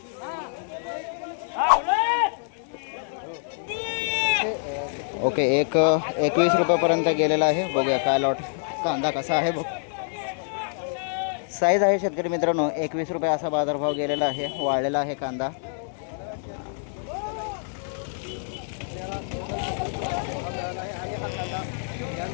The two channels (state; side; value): silent; right; digital silence